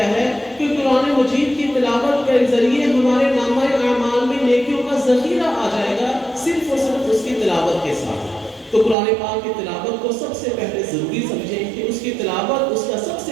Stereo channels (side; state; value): left; drops out; at 9.0 s